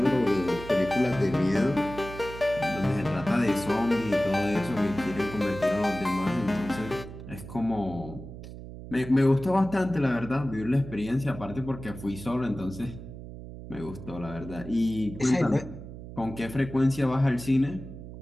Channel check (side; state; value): right; noise; hum, 12 dB below the sound